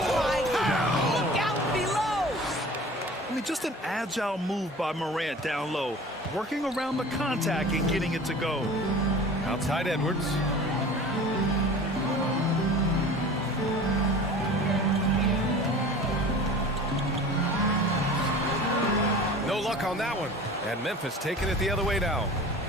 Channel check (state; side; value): normal; both; correlation 0.41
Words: my God! Look out below! I mean, just an agile move by Morant down low, working around the contact and getting it to go. Outside Edwards. No luck on that one. And Memphis taking it the other way now.